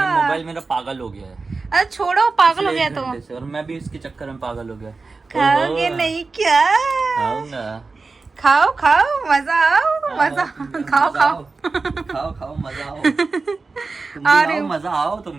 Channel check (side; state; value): left; quieter; 4.0 dB